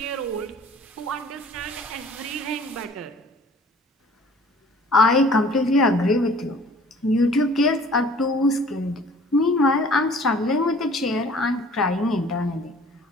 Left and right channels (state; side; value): normal; both; correlation 0.51